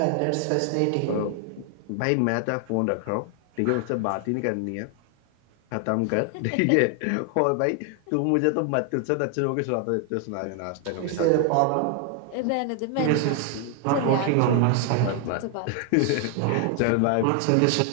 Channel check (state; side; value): different; both; correlation 0.00